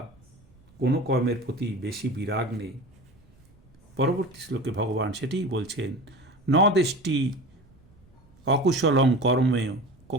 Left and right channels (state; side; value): noise; right; rumble, 29 dB below the sound